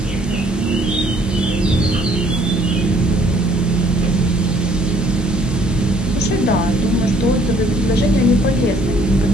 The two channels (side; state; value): both; normal; correlation 0.61